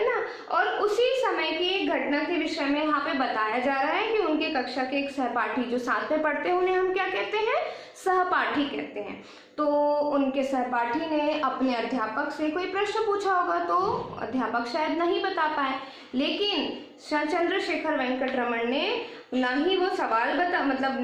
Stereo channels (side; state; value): both; identical; correlation 1.00